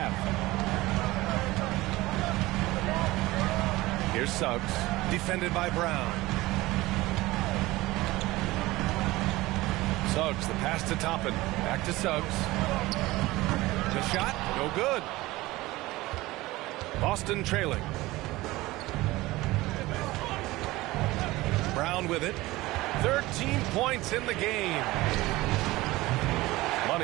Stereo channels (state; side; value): quieter; left; 19.2 dB